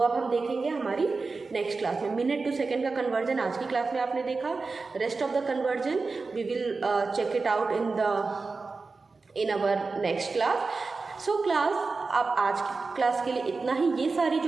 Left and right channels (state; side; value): quieter; left; 4.1 dB